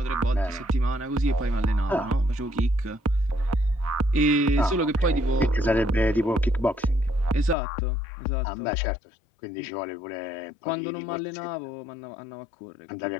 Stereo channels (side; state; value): right; drops out; at 7.6 s